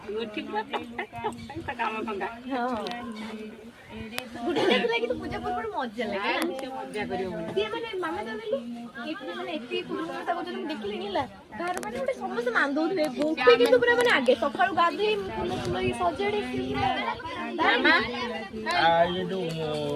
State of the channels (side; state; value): both; identical; correlation 1.00